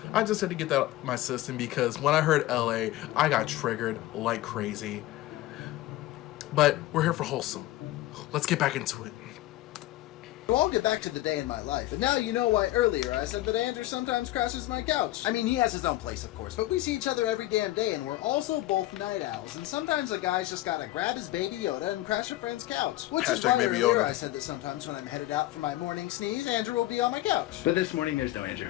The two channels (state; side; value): quieter; right; 16.2 dB